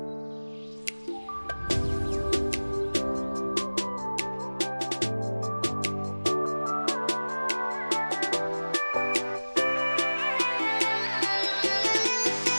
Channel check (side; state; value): both; inverted; correlation -1.00